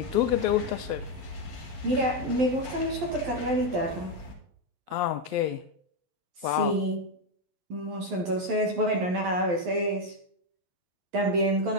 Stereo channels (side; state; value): left; late; 11 ms